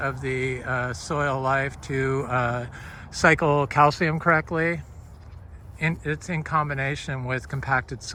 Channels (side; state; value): both; identical; correlation 1.00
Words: the soil life to cycle calcium correctly. It's in combination with compacted